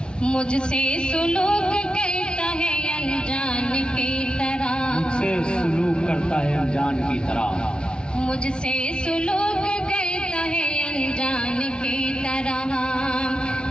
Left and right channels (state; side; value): late; right; 0.054 ms